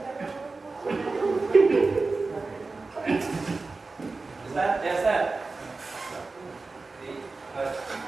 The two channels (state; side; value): quieter; left; 3.8 dB